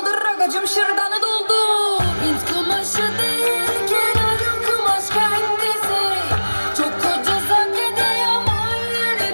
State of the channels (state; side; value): inverted; both; correlation -1.00